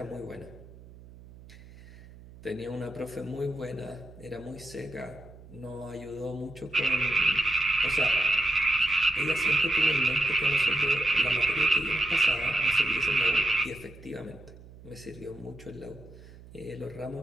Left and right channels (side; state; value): right; noise; hum, 20 dB below the sound